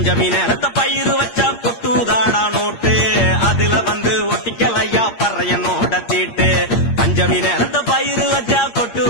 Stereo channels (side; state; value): right; late; 8.6 ms